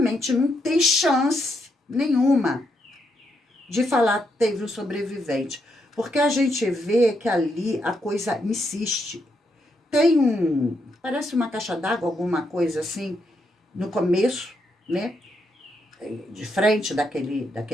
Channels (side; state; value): both; normal; correlation 0.79